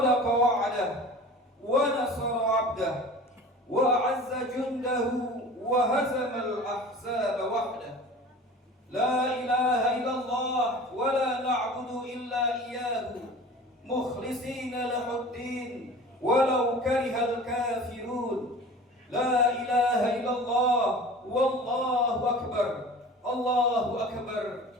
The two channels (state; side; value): normal; both; correlation 0.40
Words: وعده ونصر عبده وأعز جنده وهزم الأحزاب وحده لا إله إلا الله ولا نعبد إلا إياه مخلصين له الدين ولو كره الكافرون لا إله إلا الله والله أكبر الله أكبر